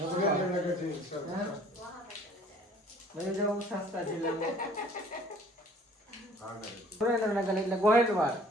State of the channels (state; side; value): normal; both; correlation 0.54